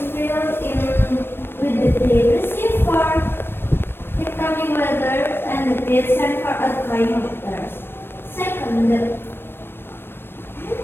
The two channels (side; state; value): right; late; 0.10 ms